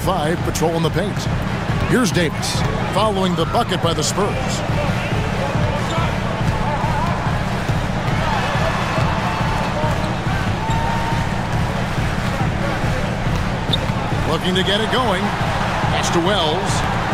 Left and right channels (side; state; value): both; identical; correlation 1.00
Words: patrolling the paint. Here's Davis, following the bucket by the Spurs. Looking to get it going. Pass to Wells.